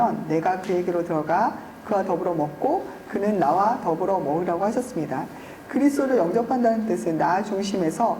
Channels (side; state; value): both; identical; correlation 1.00